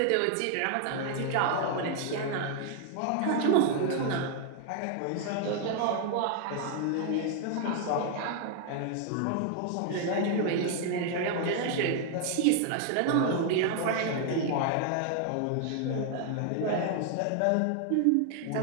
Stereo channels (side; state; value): both; different; correlation 0.00